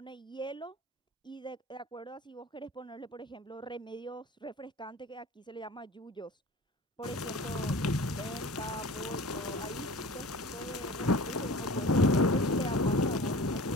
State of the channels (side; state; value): both; normal; correlation 0.39